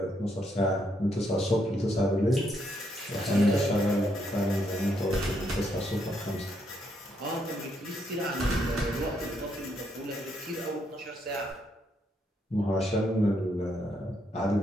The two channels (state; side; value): normal; both; correlation 0.75